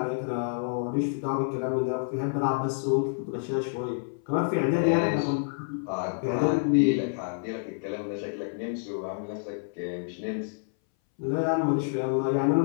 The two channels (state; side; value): silent; right; 59 dB below the other